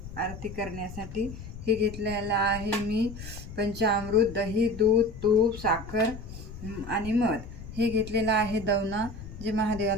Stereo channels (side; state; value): left; noise; rumble, 12 dB below the sound